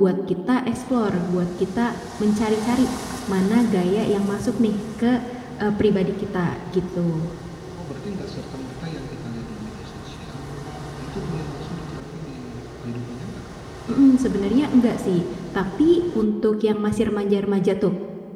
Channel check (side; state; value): both; identical; correlation 1.00